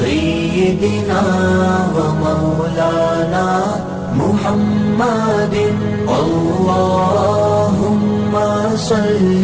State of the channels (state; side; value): identical; both; correlation 1.00